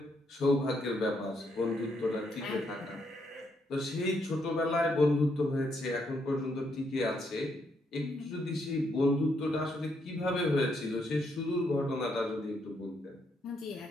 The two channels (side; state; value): both; normal; correlation 0.76